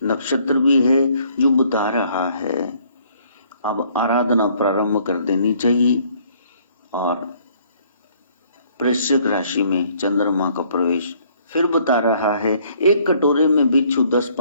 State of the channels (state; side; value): inverted; both; correlation -0.62